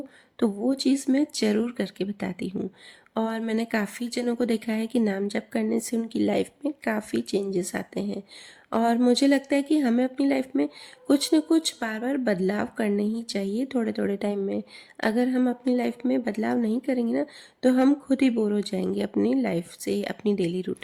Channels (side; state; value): both; identical; correlation 1.00